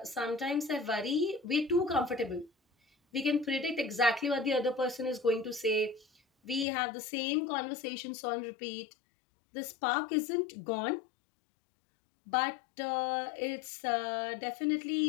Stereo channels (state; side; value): drops out; right; at 6.7 s